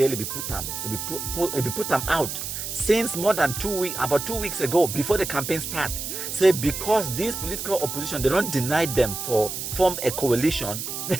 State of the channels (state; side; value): noise; right; hiss, 5 dB below the sound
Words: be put them out since more than 2 weeks, about 2 weeks ago, before the campaign start. Say because this political opposition, they don't deny them for form a coalition,